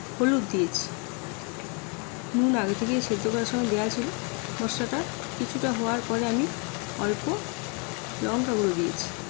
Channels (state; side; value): quieter; right; 34.8 dB